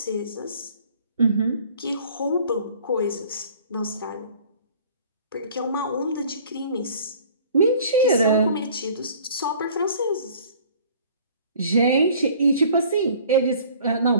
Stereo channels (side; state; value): both; inverted; correlation -0.51